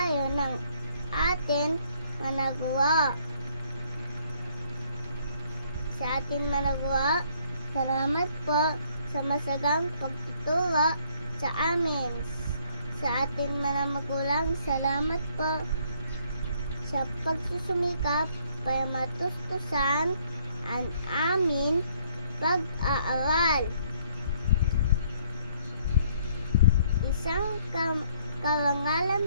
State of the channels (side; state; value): both; inverted; correlation -0.65